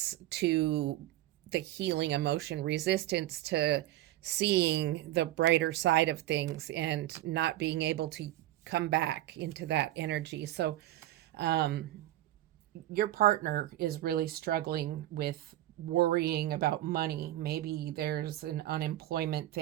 to the healing emotion, resistance to seeing the brighter side of things and not being able to come back into that energy. So your partner is really struggling with worrying about money. Maybe there's an unemployment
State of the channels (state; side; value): quieter; left; 14.5 dB